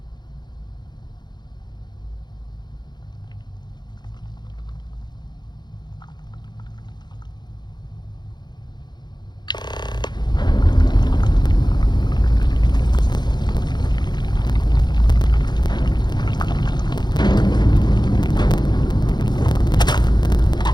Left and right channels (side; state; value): right; late; 0.21 ms